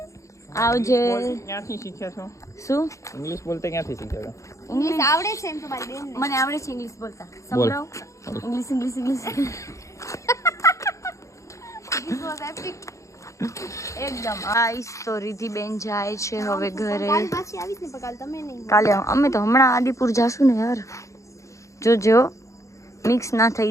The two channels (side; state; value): right; late; 0.15 ms